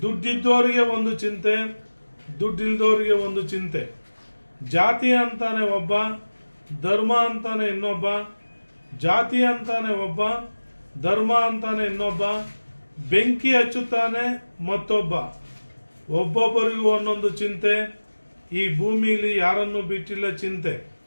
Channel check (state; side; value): inverted; both; correlation -1.00